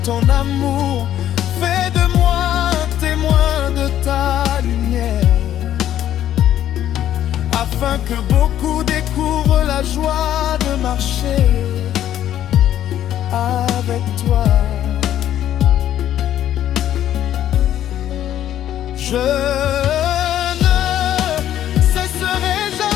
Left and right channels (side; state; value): right; quieter; 11.5 dB